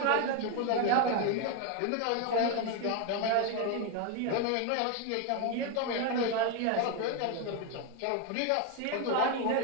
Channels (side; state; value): both; different; correlation 0.02